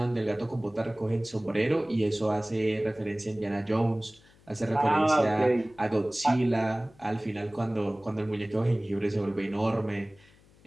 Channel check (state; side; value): noise; left; hum, 28 dB below the sound